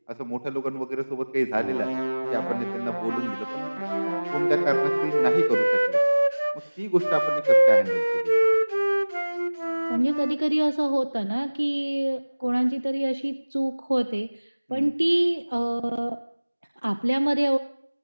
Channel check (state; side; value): inverted; both; correlation -1.00